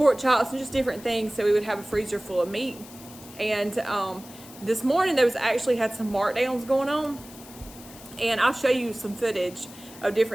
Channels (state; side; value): noise; left; hiss, 18 dB below the sound